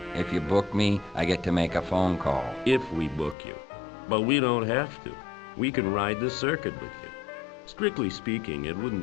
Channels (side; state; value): right; drops out; at 3.4 s